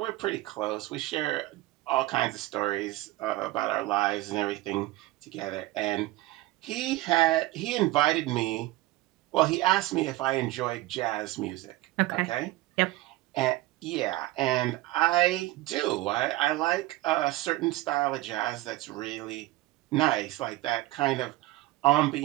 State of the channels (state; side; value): quieter; left; 17.8 dB